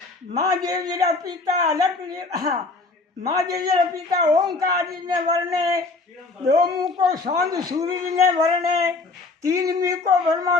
माँ देवीरा पिता अलग माँ देवीरा पिता ओंकार जी ने वर्णे, दो मुख को सौंद सूर्य ने वर्णे, तीन मुख को ब्रह्मा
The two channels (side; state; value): right; quieter; 3.6 dB